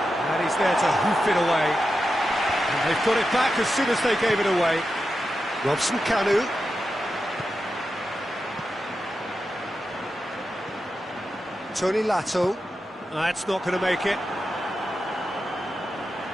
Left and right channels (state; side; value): normal; both; correlation 0.90